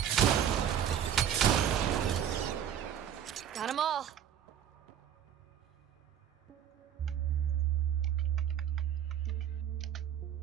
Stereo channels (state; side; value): quieter; left; 9.5 dB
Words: Got them all.